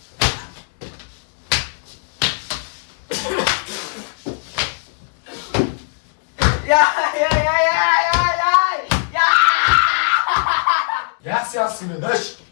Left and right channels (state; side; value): silent; right; digital silence